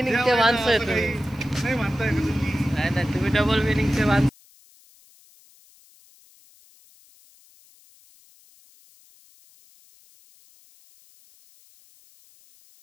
माणसं आहे तुम्ही. नाही म्हणताय का तुम्ही? नाही तुम्ही डबल मिनिंगचे माणसं.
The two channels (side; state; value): left; noise; hiss, 29 dB below the sound